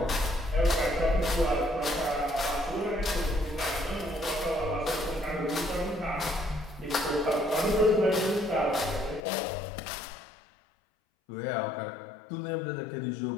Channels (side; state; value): right; drops out; at 9.2 s